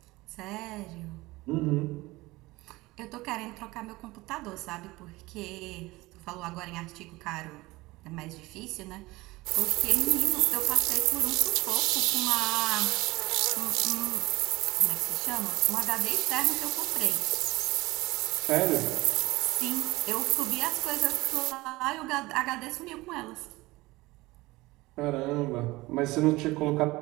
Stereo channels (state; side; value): quieter; left; 20.6 dB